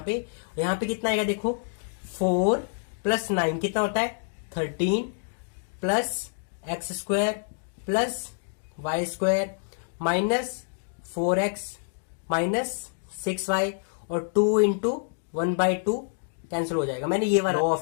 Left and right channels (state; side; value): silent; right; digital silence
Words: पे कितना आएगा? देखो 4 प्लस 9 कितना होता है? 13 plus X square plus Y square minus 4x minus 6y और 2 इंटू 1/2 कैंसिल हो जाएगा. मैंने ये वाला लॉ